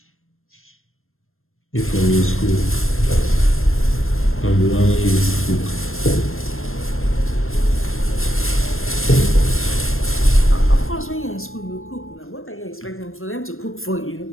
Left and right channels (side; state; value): right; late; 0.61 ms